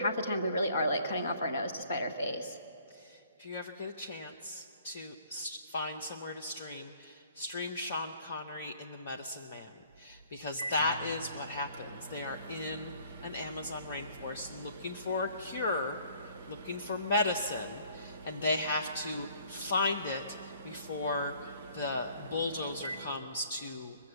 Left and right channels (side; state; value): both; inverted; correlation -0.58